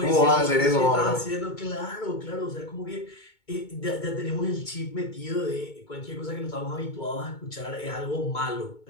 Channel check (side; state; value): right; late; 2.2 ms